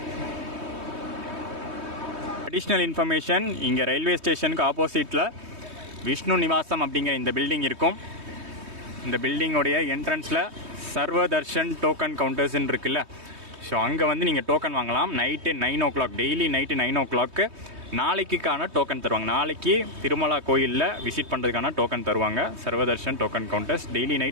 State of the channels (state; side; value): late; left; 3.2 ms